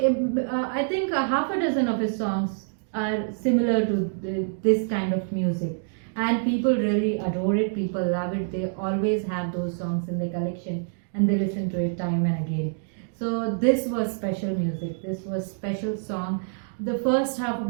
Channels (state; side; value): silent; left; digital silence